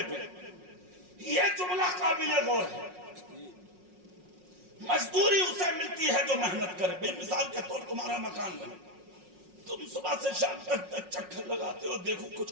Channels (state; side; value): late; left; 5.5 ms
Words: پہ، یہ جملہ قابل غور ہے۔ مزدوری اسے ملتی ہے جو محنت کرے۔ بے مثال کے طور تمہارا مکان بنے، تم صبح سے شام تک چکر لگاتے ہو، دیکھو کچھ